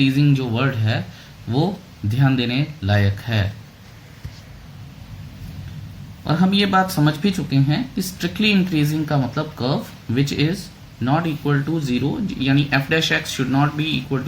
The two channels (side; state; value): both; identical; correlation 1.00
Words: जो वर्ड है वो ध्यान देने लायक है, और हम ये बात समझ भी चुके हैं कि स्ट्रिक्टली इंक्रीजिंग का मतलब curve which is not equal to zero, यानी f dash x should not be equal